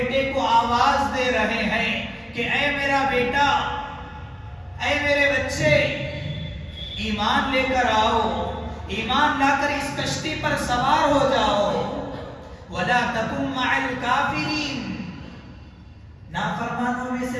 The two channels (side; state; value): both; identical; correlation 1.00